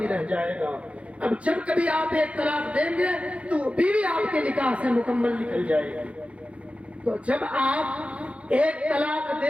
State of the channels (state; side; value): late; left; 0.062 ms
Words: رہ جائے گا. اب جب کبھی آپ 1 طلاق دیں گے تو وہ بیوی آپ کے نکاح سے مکمل نکل جائے گی. تو جب آپ 1 طلاق